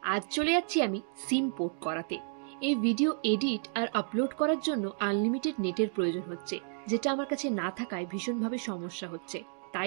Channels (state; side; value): silent; left; 57 dB below the other